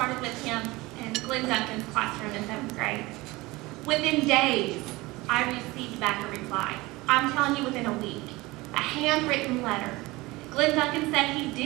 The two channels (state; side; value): quieter; left; 21.3 dB